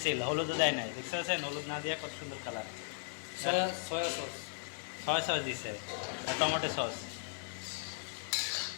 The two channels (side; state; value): right; silent; 53 dB below the other